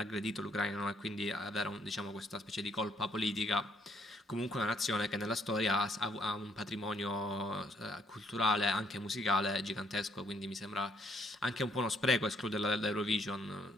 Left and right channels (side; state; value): both; normal; correlation 0.68